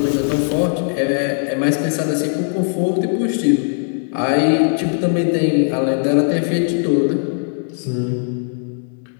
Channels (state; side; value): silent; right; digital silence